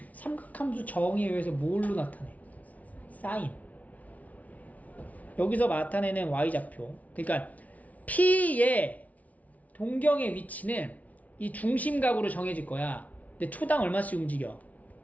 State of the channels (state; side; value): late; right; 0.071 ms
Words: 삼각함수 정의에 의해서 뭘로 나타내? 사인. 여기서 나타내는 Y 좌표. 그러니까 P의 동경의 위치는 이 중심각으로 정해질 거야. 근데 초당 얼마씩 움직여?